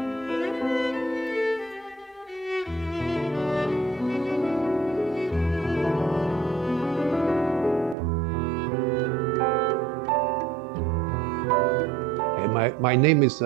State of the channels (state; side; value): drops out; left; at 8.0 s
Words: My name is